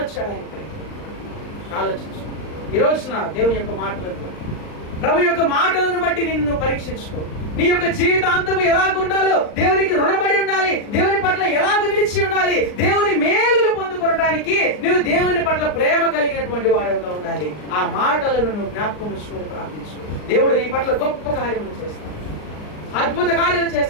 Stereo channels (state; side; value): late; right; 39 ms